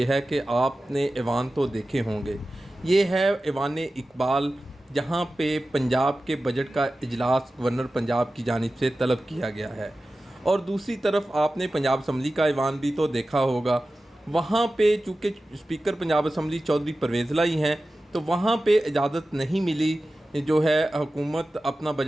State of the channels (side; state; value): both; normal; correlation 0.95